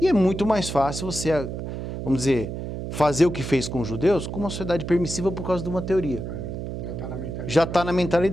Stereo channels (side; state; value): right; noise; hum, 6 dB below the sound